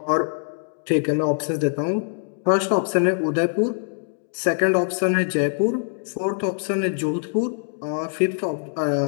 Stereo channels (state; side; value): silent; right; digital silence